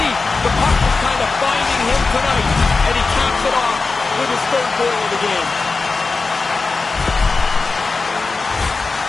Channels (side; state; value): right; quieter; 4.1 dB